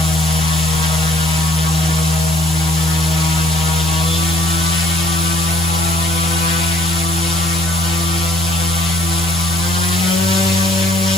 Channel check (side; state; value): both; normal; correlation 0.58